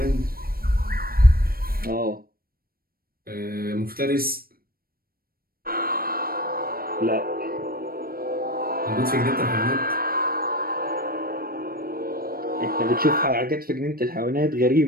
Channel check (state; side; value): late; left; 0.43 ms